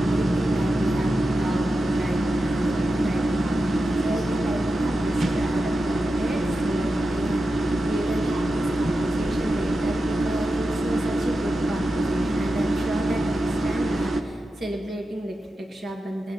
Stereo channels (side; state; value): both; normal; correlation 0.91